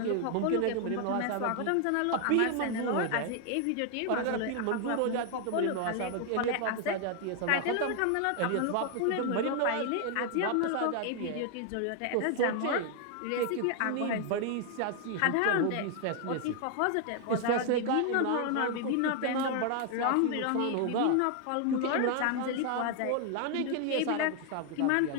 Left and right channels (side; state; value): both; different; correlation 0.00